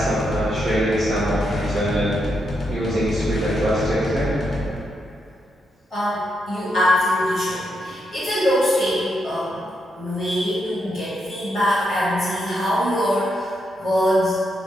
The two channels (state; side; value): normal; both; correlation 0.81